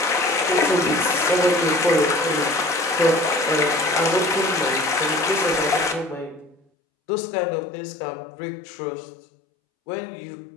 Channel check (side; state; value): right; drops out; at 6.6 s